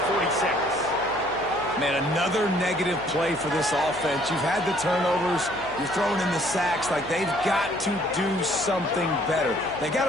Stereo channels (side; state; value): left; noise; hum, 19 dB below the sound